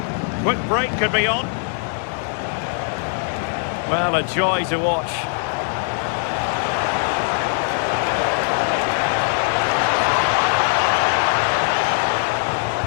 Quick break could be on. Well, a joy to watch.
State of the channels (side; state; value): right; silent; digital silence